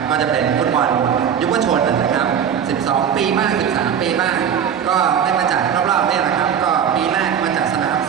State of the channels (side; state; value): left; quieter; 8.2 dB